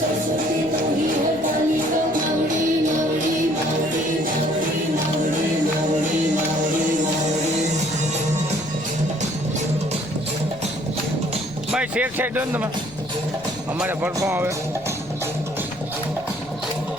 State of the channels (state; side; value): noise; left; rumble, 22 dB below the sound